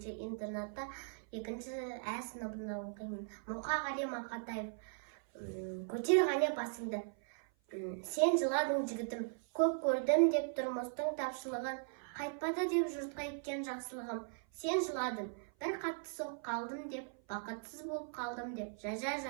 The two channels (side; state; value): left; silent; 52 dB below the other